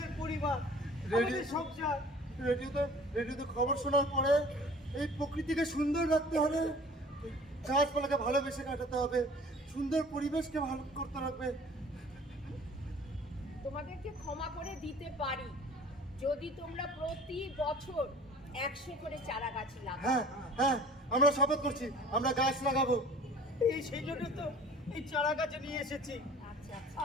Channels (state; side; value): normal; both; correlation 0.47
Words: পরিবার, আমাদের সংসার। রেডিওতে খবর শোনার পরে এই প্রকৃতিকে সুন্দর রাখতে হবে, গাছপালাকে ভালোবেসে কাটাতে হবে, সুন্দর পরিবেশকে ভালো করতে হবে। তোমাদেরকে ক্ষমা করে দিতে পারি যদি তোমরা প্রতি বছর 100 করে চারা গাছ লাগাও। হ্যাঁ হ্যাঁ, আমরা শপথ করছি, আমরা গাছ লাগাবো। সেই জন্য তো এই চারা গাছ নিয়ে এসেছি। আচ্ছা আচ্ছা,